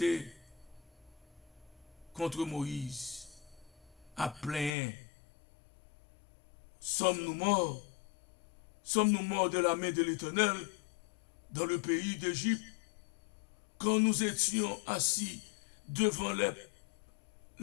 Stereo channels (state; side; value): drops out; right; at 4.7 s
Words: contre Moïse à plein. Sommes-nous morts? Sommes-nous morts de la main de l'Éternel dans le pays d'Égypte quand nous étions assis devant